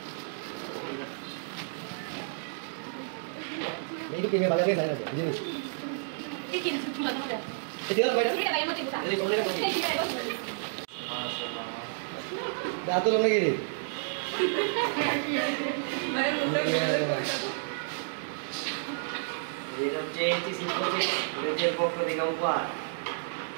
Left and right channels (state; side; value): silent; left; digital silence